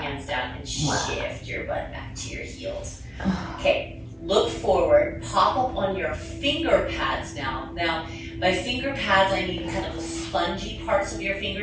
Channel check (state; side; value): identical; both; correlation 1.00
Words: hands down, and shift your butt back to your heels. Okay, look forward, pop up on your finger pads now. Now, by finger pads, I mean kind of the spongy parts of your